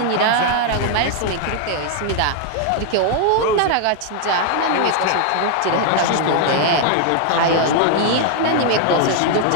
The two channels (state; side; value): different; both; correlation 0.00